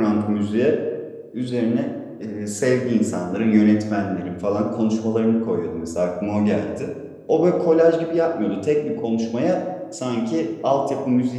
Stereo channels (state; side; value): identical; both; correlation 1.00